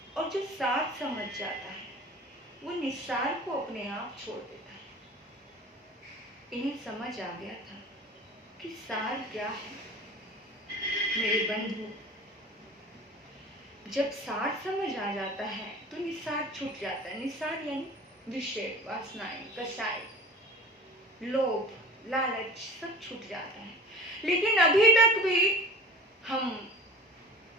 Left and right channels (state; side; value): normal; both; correlation 0.40